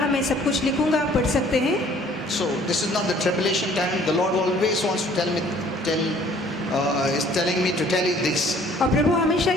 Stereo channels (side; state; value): both; normal; correlation 0.56